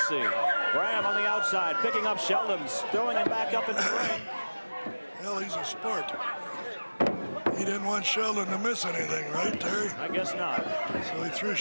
Graham on the outside, picking up Sheldon's, throwing him back up in the ring. Hell, he's a sport. He didn't want Sheldon to miss anything, right, Terry? I guess not. So he threw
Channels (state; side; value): inverted; both; correlation -1.00